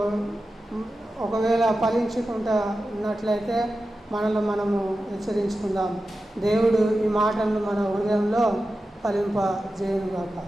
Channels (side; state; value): both; normal; correlation 0.92